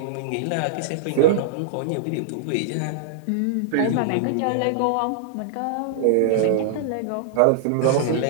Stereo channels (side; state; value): both; different; correlation -0.01